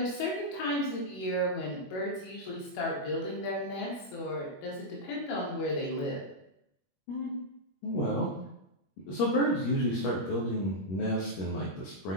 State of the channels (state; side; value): late; right; 21 ms